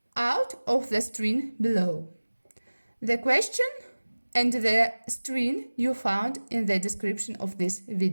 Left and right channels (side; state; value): both; inverted; correlation -1.00